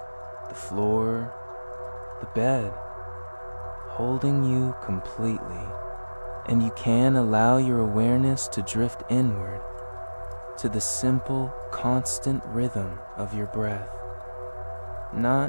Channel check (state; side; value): inverted; both; correlation -1.00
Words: the floor, the bed, holding you completely. And you can allow your awareness to drift inward to the simple, constant rhythm of your breath,